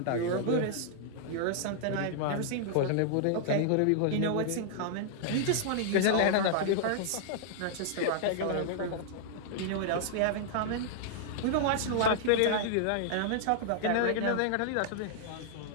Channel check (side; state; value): both; different; correlation -0.01